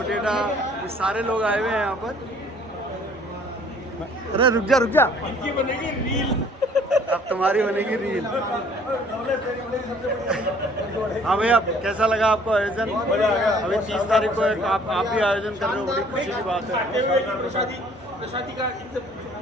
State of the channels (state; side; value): normal; both; correlation 0.56